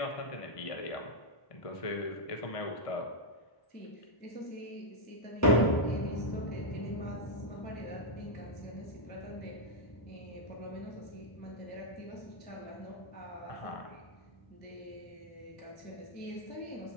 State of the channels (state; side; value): late; right; 1.0 ms